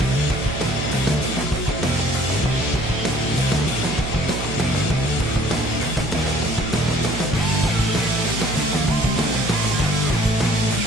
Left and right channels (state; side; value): noise; right; hum, 7 dB below the sound